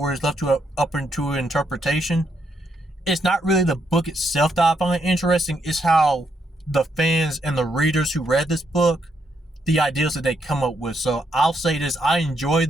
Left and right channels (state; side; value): normal; both; correlation 0.77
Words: it's left to up into interpretation, it's not really the book itself that I find interesting. It's how the fans and the readers who read this book, the ideas that they come up with. So I'll say this, I enjoy